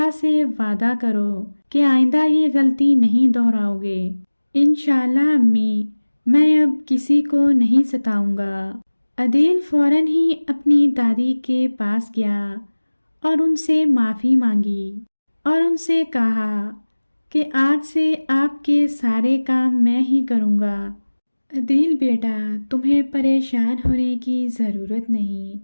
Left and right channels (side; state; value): both; inverted; correlation -1.00